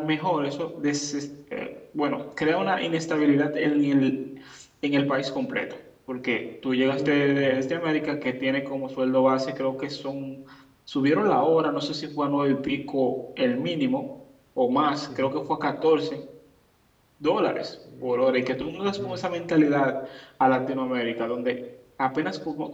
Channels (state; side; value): identical; both; correlation 1.00